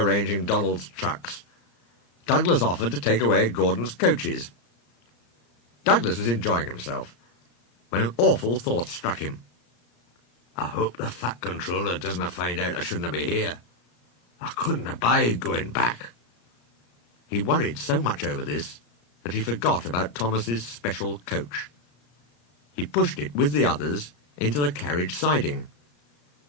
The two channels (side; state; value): right; late; 34 ms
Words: Donald's trucks, Douglas offered to take away Gordon's coaches. Douglas was enjoying himself, when an awful thought struck him. "I hope the Fat Controller doesn't find out I shouldn't be here. I couldn't abide going back." He worried so much over this that he forgot about Thomas's special coach. He pushed it with the others into the carriage siding,